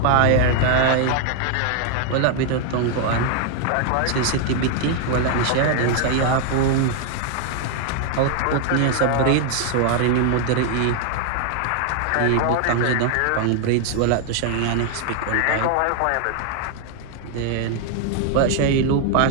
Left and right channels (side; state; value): both; different; correlation 0.00